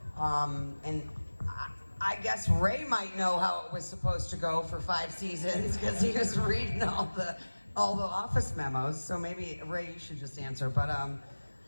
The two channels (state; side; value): inverted; both; correlation -1.00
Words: And I guess Ray might know how it was supposed to go for 5 seasons because he was reading all the office memos. So maybe Ray, you should just answer. But